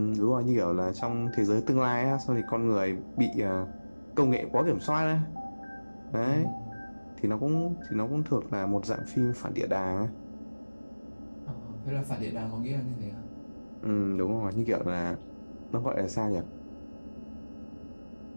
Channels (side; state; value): both; inverted; correlation -1.00